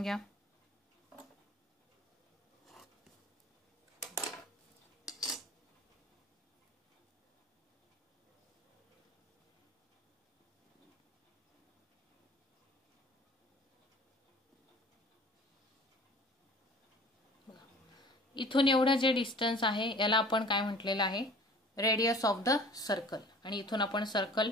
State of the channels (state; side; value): normal; both; correlation 0.45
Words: घ्या. इथून एवढं जे डिस्टन्स आहे याला आपण काय म्हटलेलं आहे, रेडियस ऑफ द सर्कल. आणि इथून आपण सर्कल